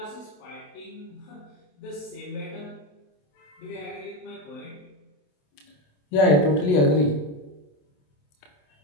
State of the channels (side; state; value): right; late; 27 ms